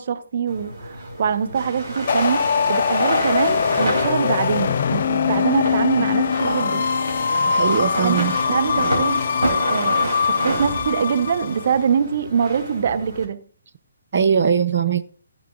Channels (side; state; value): both; inverted; correlation -0.71